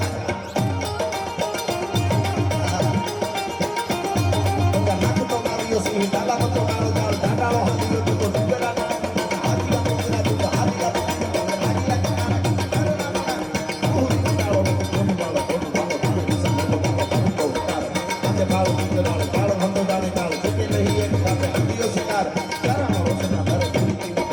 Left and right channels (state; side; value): identical; both; correlation 1.00